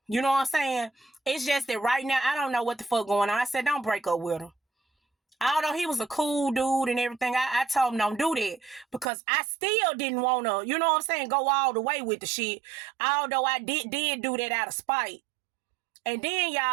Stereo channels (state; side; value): drops out; left; at 9.1 s